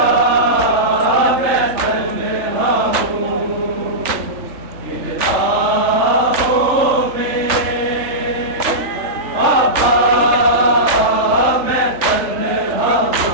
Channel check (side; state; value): left; late; 3.4 ms